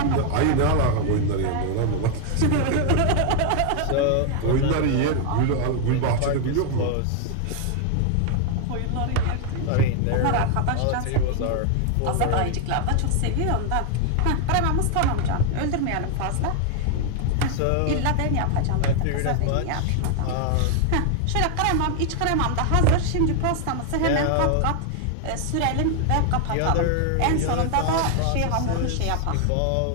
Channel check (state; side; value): different; both; correlation 0.00